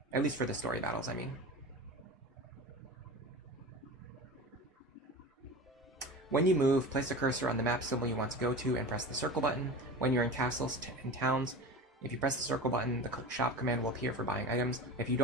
At least for the story battles, I mean. When you move, place the cursor on the map symbol you want to go to and press the circle button. When you're in castles and towns, if you press the circle button, the shop command will appear for buying items. If you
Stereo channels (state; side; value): normal; both; correlation 0.31